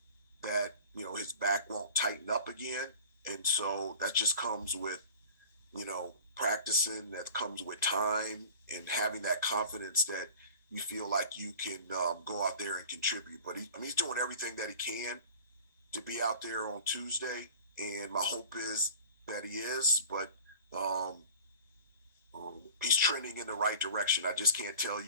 that his back won't tighten up again, and so that just comes with practicing. That comes with time and having that confidence that you feel like you can go out there and contribute. But he's doing everything that he can to be out there on Tuesday, and my hope is that he is, but he's trending in the right direction. I just can't tell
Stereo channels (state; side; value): inverted; both; correlation -0.41